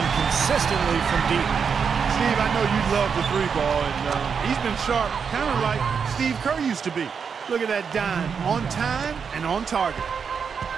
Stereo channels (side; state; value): left; quieter; 6.3 dB